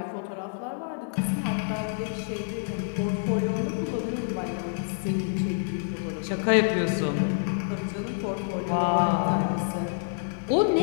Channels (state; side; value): silent; right; digital silence